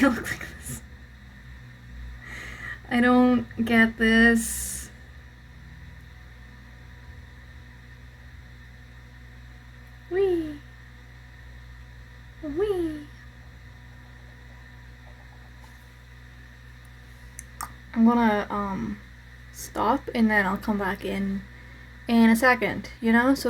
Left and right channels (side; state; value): both; identical; correlation 1.00